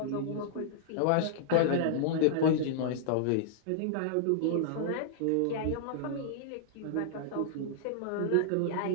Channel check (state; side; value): different; both; correlation -0.01